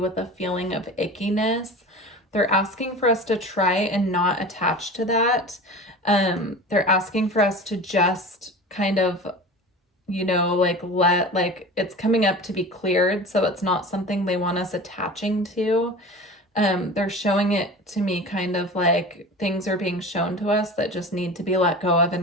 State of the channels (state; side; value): normal; both; correlation 0.35